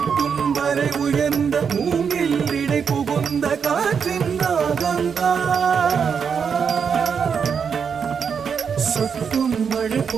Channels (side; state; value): left; quieter; 6.6 dB